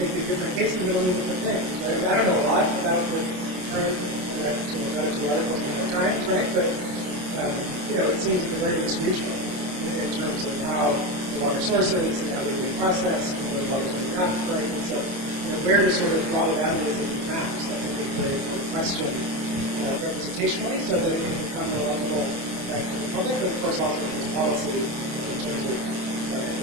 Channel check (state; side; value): late; left; 27 ms